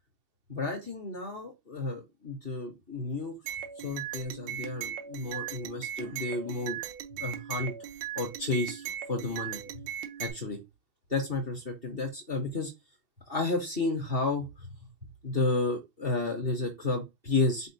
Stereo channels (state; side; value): late; left; 2.7 ms